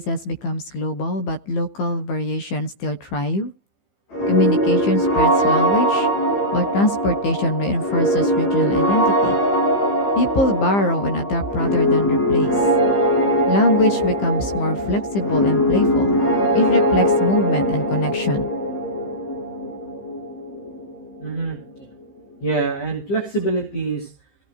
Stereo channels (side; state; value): right; late; 15 ms